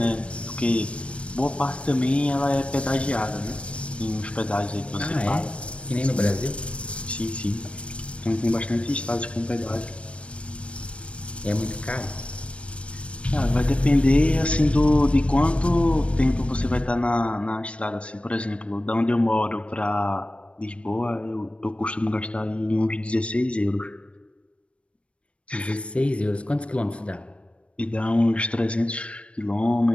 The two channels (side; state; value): right; late; 0.061 ms